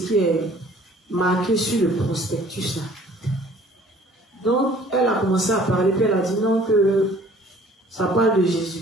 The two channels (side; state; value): both; normal; correlation 0.54